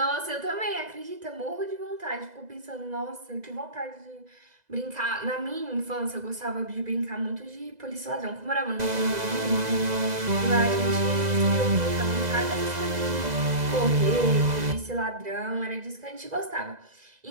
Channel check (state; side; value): late; left; 2.0 ms